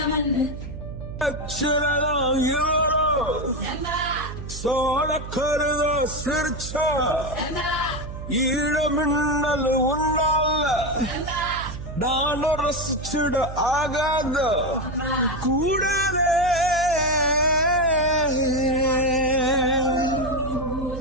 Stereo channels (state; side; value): noise; right; hum, 9 dB below the sound